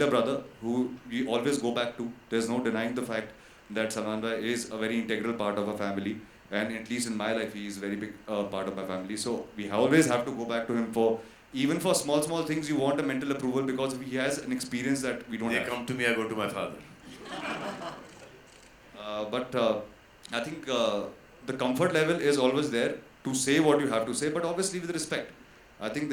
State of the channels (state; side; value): identical; both; correlation 1.00